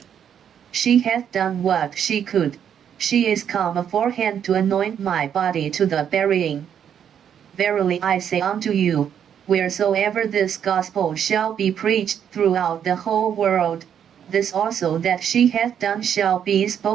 She hath done what she could, she is come aforehand to anoint my body to the burying. Verily I say unto you, wheresoever this gospel shall be preached throughout the whole world, this also that she hath done shall be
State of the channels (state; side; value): quieter; left; 8.7 dB